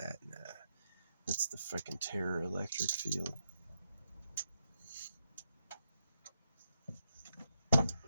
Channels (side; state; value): both; inverted; correlation -0.82